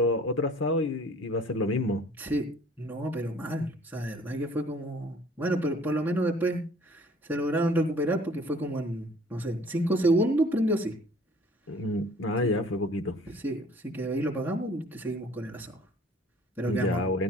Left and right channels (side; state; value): both; normal; correlation 0.53